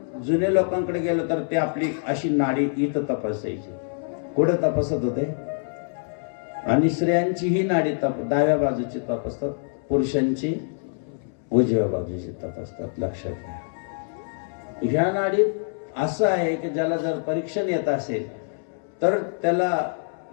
जुन्या लोकांकडे गेलो तर ते आपली अशी नाडी इथं तपासायची. कुठं तपासत होते? आणि स्त्रियांची ही नाडी डाव्या बाजूची तपासतात, पुरुषांची उजव्या बाजूची तपासतात. लक्षात घ्या. ह्या नाडीत असं आहे की ज्याला जर परीक्षण येत असेल तर त्याला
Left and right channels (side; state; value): right; silent; 62 dB below the other